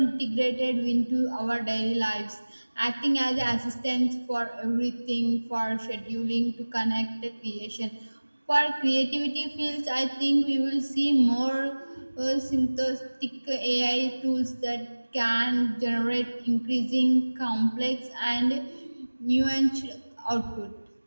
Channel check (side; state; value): both; inverted; correlation -1.00